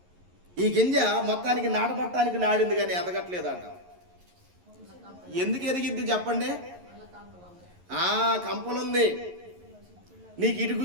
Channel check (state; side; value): late; left; 11 ms